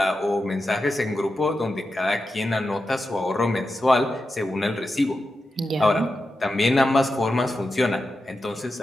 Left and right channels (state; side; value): normal; both; correlation 0.90